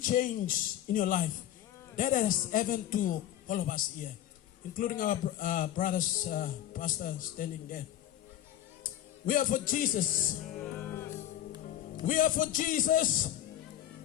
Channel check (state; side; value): quieter; right; 12.3 dB